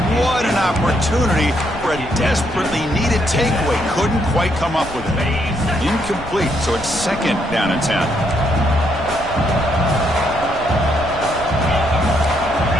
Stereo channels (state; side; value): noise; left; rumble, 14 dB below the sound